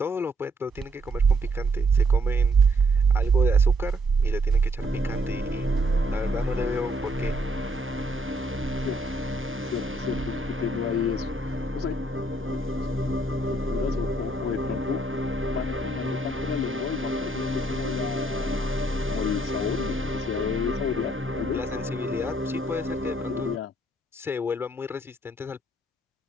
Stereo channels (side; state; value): both; normal; correlation 0.69